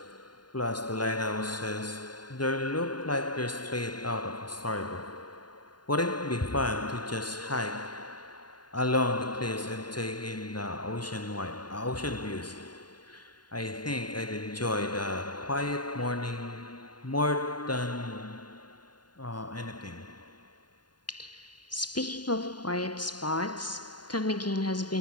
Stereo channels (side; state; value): right; late; 0.70 ms